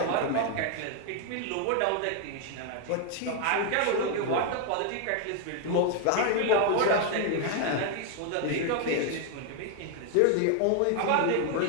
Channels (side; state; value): both; different; correlation 0.01